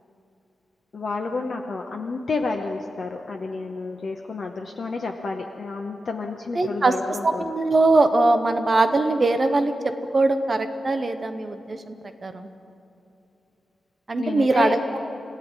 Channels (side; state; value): both; normal; correlation 0.91